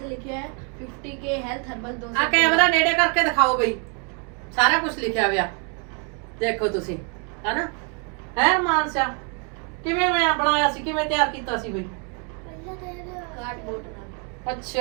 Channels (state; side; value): quieter; left; 38.0 dB